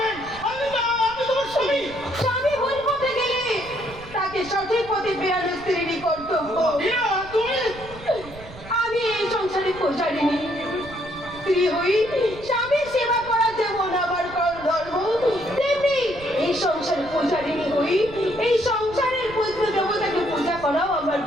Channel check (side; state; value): right; noise; rumble, 17 dB below the sound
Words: আমি তোমার স্বামী। স্বামী ভুল পথে গেলে তাকে সঠিক পথে ফেরানো স্ত্রীরই কর্তব্য। তুমি আমি এই সংসারে পৌঁছারিনি। স্ত্রী হই, স্বামীর সেবা করা যেমন আমার ধর্ম, তেমনি এই সংসারে পৌঁছারিনি হই এই সংসারের পুত্র দেবতাকে পূজা করাও আমার